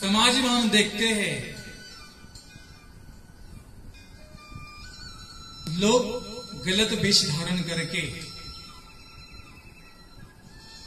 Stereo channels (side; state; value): both; identical; correlation 1.00